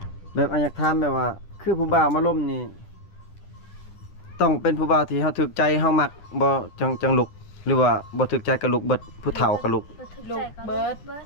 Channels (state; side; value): late; right; 10 ms